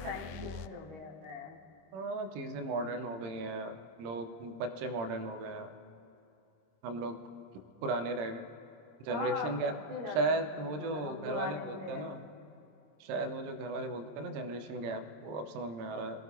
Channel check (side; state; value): left; late; 26 ms